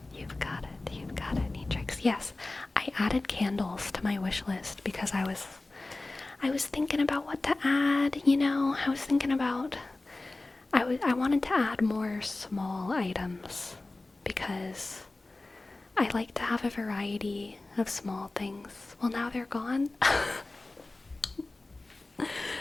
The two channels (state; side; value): quieter; right; 3.1 dB